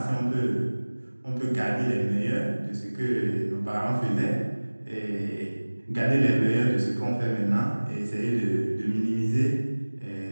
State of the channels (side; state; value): both; inverted; correlation -1.00